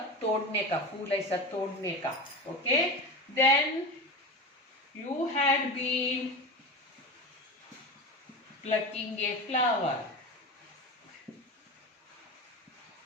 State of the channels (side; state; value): both; normal; correlation 0.26